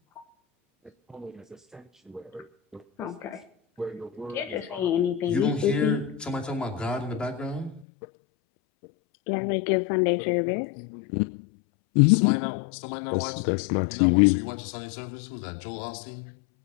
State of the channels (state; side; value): drops out; right; at 7.9 s